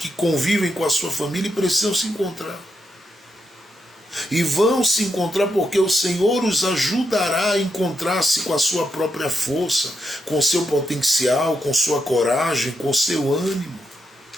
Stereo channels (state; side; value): normal; both; correlation 0.83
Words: convivem com a sua família e precisam se encontrar. E vão se encontrar porque o Senhor os ajudará a encontrar-se com a sua própria força, com seu potencial, com sua coragem, com seu ânimo,